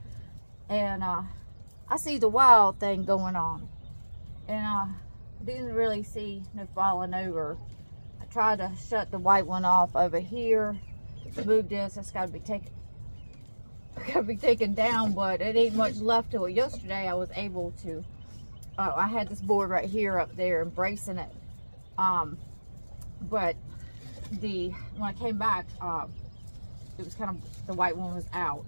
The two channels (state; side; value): inverted; both; correlation -1.00